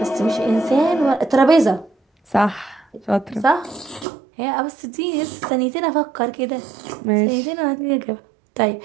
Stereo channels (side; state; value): left; drops out; at 4.0 s